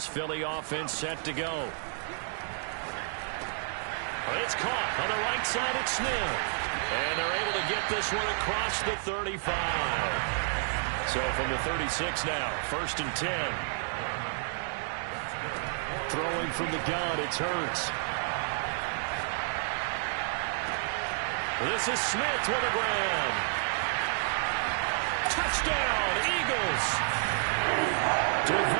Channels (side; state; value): left; silent; 58 dB below the other